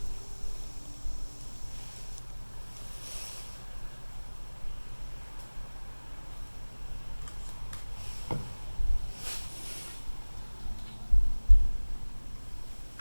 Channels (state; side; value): inverted; both; correlation -1.00